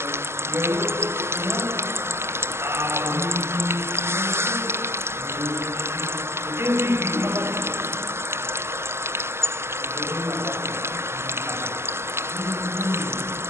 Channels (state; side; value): late; left; 0.12 ms